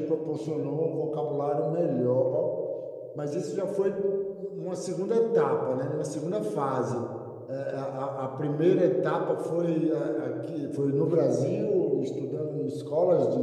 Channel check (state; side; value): identical; both; correlation 1.00